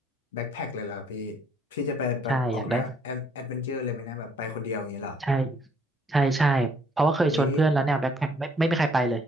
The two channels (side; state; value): both; normal; correlation 0.65